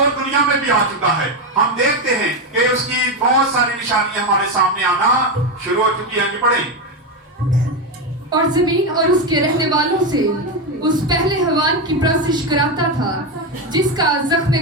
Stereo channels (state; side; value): normal; both; correlation 0.11